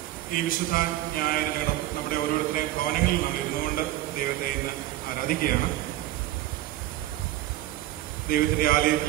ഈ വിശുദ്ധ ഞായർ നമ്മുടെ ഓരോരുത്തരെയും ഭവനങ്ങളിൽ നമ്മൾ ഇരുന്നുകൊണ്ട് ദൈവത്തെ ഇന്ന് ആരാധിക്കുകയാണ്. ദൈവത്തിന്റെ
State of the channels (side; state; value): left; quieter; 15.0 dB